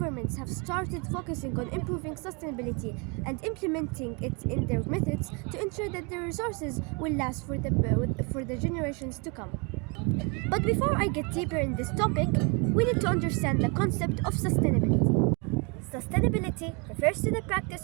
have started focusing on improving sustainability and implementing it in their methods to ensure that the resources will last for the generations to come. But before I get deeper in this topic, we need to understand the concept of sustainability. Sustainability refers to the practice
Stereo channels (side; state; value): left; quieter; 32.5 dB